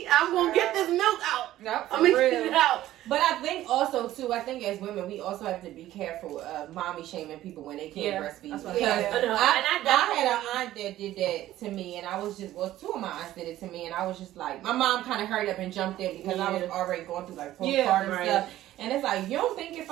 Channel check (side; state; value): left; quieter; 14.2 dB